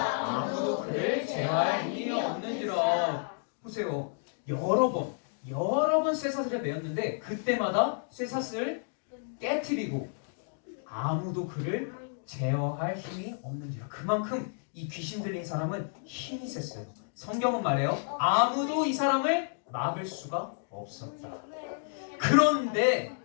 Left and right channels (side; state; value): right; silent; digital silence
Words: 여러 번 쇠사슬에 매었는데 그때마다 쇠사슬을 깨트리고 아무도 그를 제어할 힘이 없는지라. 그만큼 이 귀신 들린 사람은 힘이 셌어요. 성경은 말해요. 아무도 이 사람을 막을 수가 없었다. 그런데